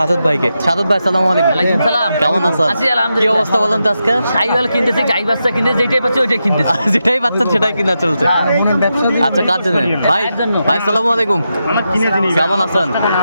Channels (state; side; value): inverted; both; correlation -0.87